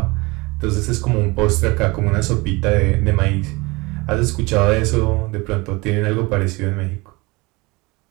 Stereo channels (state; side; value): quieter; left; 24.3 dB